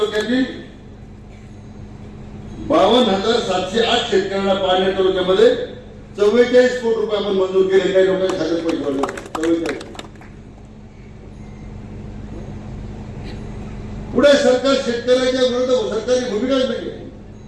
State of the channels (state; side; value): identical; both; correlation 1.00